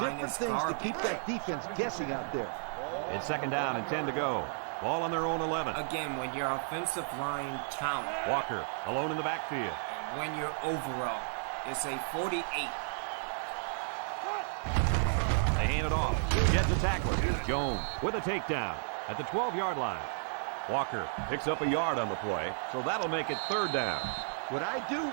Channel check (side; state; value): left; silent; digital silence